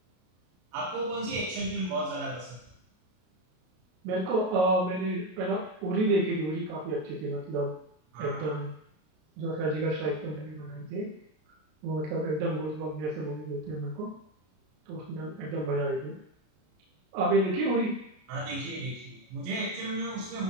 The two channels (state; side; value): late; left; 33 ms